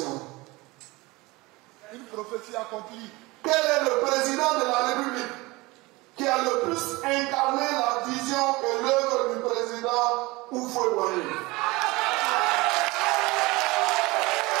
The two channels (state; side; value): quieter; left; 22.4 dB